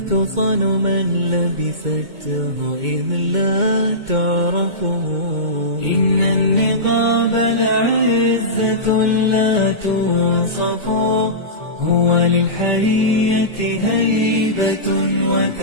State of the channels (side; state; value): left; late; 2.2 ms